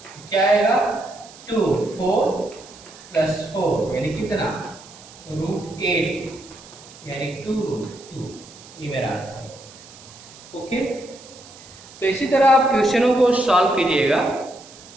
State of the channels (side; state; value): right; noise; hiss, 20 dB below the sound